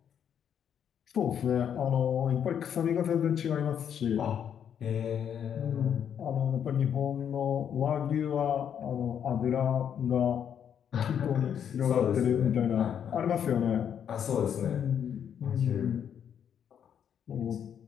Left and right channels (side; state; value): right; quieter; 8.6 dB